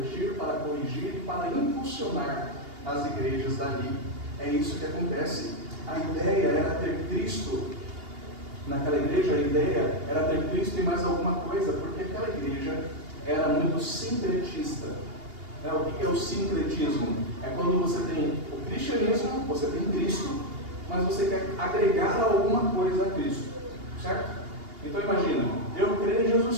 para corrigir e para impulsionar as igrejas dali. É isso que acontece. A ideia era ter Cristo naquela igreja, a ideia era ter Cristo e mais alguma coisa, porque aquela igreja era muito sincretista. O que é o sincretismo? É quando você tem o cristianismo, você tem Cristo, mas você quer agregar alguma coisa a Cristo, certo? Então imagina, eu creio em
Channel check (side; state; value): left; late; 2.8 ms